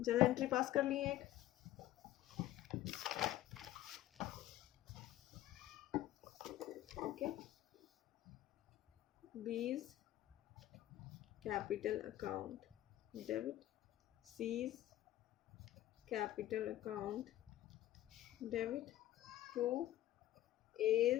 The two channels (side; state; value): right; quieter; 14.1 dB